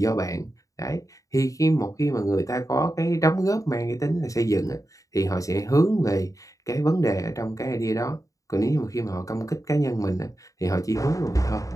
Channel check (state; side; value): late; right; 0.16 ms